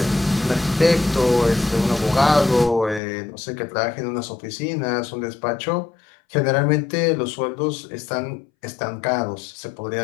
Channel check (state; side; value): drops out; right; at 3.0 s